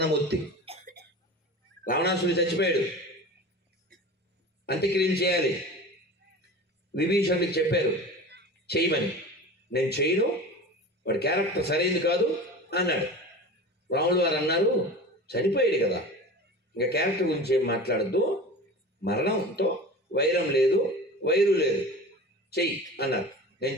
రావణాసుడు చచ్చిపోయాడు, అంత్యక్రియలు చేయాలి. విభీషణుడికి చెప్పారు చేయమని. నేను చేయను, వాడి క్యారెక్టర్ సరైనది కాదు అన్నాడు. రాముడు వారు అన్నారు, చనిపోయాడు కదా, ఇంకా క్యారెక్టర్ గురించి ఏం మాట్లాడద్దు, మరణంతో వైరం లేదు, వైరు లేదు, చెయ్యి అన్నారు. నేను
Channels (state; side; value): normal; both; correlation 0.34